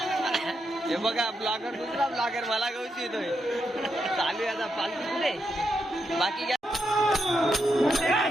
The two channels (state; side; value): normal; both; correlation 0.83